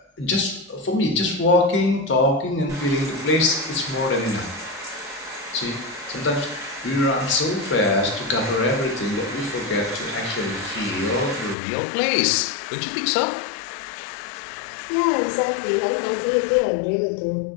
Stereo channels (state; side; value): drops out; right; at 11.6 s